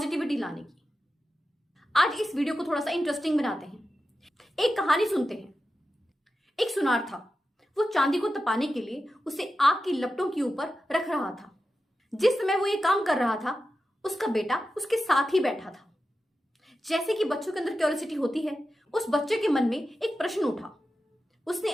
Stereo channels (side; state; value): both; normal; correlation 0.91